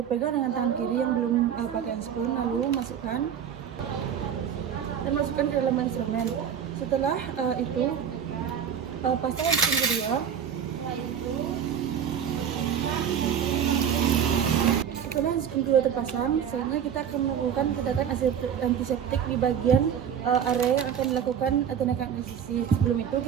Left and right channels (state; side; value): quieter; left; 8.3 dB